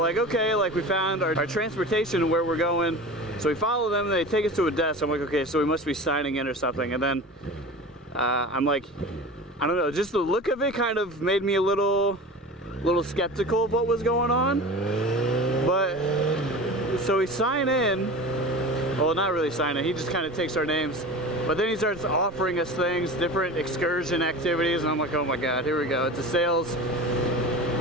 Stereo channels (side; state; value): both; normal; correlation 0.34